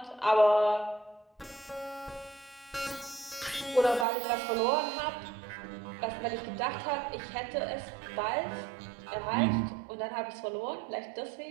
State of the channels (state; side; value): drops out; left; at 4.0 s